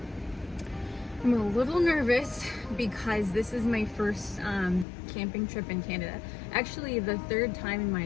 I'm a little nervous because this is my first camping trip in Canada. Actually, the third time in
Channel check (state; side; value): drops out; right; at 4.9 s